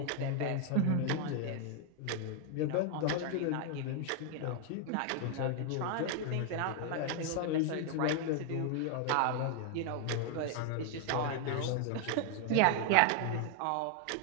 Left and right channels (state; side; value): different; both; correlation 0.00